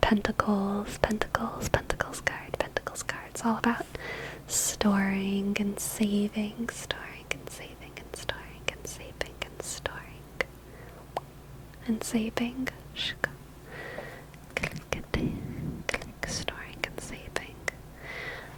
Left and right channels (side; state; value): both; identical; correlation 1.00